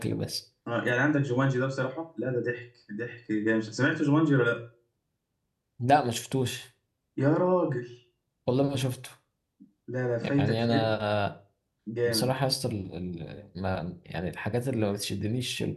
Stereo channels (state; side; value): identical; both; correlation 1.00